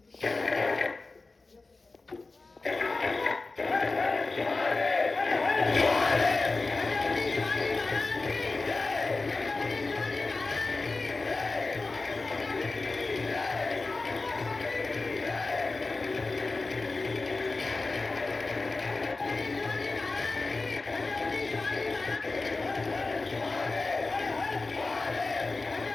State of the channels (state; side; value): quieter; right; 3.6 dB